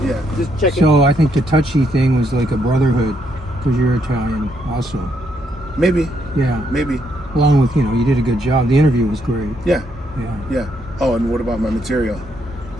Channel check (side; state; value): both; normal; correlation 0.75